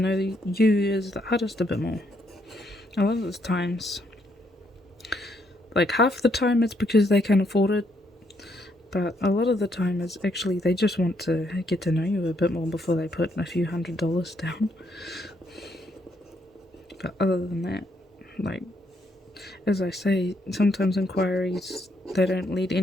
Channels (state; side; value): normal; both; correlation 0.74